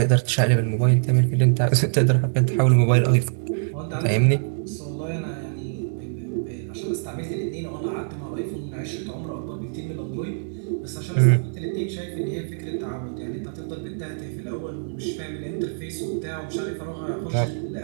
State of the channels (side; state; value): left; silent; digital silence